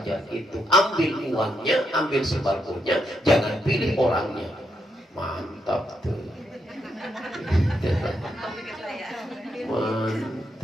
itu. Ambil uangnya, ambil sembakonya, jangan pilih orangnya. Mantap tuh.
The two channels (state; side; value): normal; both; correlation 0.79